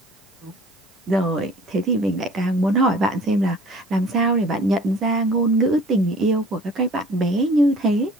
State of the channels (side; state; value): right; noise; hiss, 30 dB below the sound